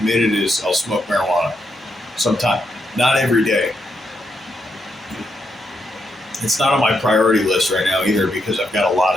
is I'll smoke marijuana sometime. Not every day. It's not on my priority list right now either, because I've got a lot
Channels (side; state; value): both; normal; correlation 0.81